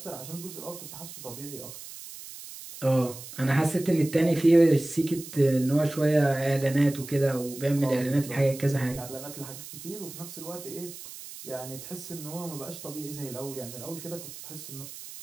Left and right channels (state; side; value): noise; right; hiss, 13 dB below the sound